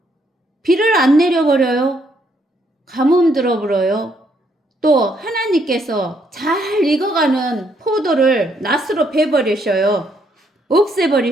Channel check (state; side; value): normal; both; correlation 0.72